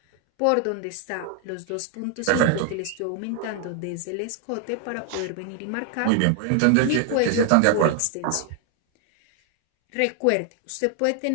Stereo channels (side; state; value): both; different; correlation 0.00